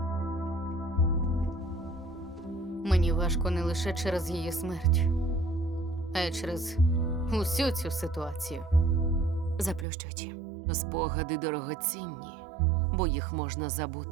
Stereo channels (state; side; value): drops out; left; at 9.9 s